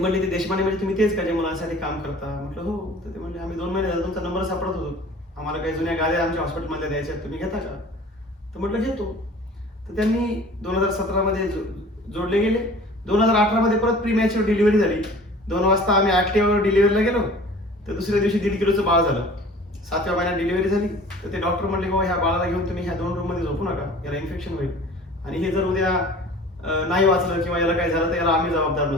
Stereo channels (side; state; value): both; normal; correlation 0.46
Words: ते देशपांडे म्हणजे तुम्ही तेच का जे मुलांसाठी काम करता. म्हटलं हो. तर ते म्हणले आम्ही 2 महिने झाले तुमचा नंबर सापडत होतो, आम्हाला काही जुन्या गाड्या आमच्या हॉस्पिटलमध्ये द्यायच्या, तुम्ही घेता का. तर म्हटलं घेतो. तर त्यांनी 2017 मध्ये जोडले गेले. 2018 मध्ये परत प्री मॅच्युअर डिलिव्हरी झाली. 2 वाजता आम्ही ऍक्टिव्हवर डिलिव्हरीला गेलो तर दुसऱ्या दिवशी 1.5 किलोचं बाळ झालं. 7व्या महिन्यात डिलिव्हरी झाली. तर ते डॉक्टर म्हणले बाबा ह्या बाळाला घेऊन तुम्ही ह्या 2 रूम मध्ये झोपू नका, याला इन्फेक्शन होईल आणि हे जर उद्या नाही वाचलं किंवा याला काय झालं तर याला आम्ही जबाबदार